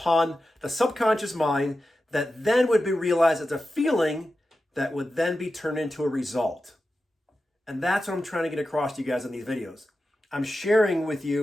the subconscious mind that then would be realized as a feeling that would then be turned into a result. And that's what I'm trying to get across to you guys in these videos. I'm sharing with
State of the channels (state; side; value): normal; both; correlation 0.92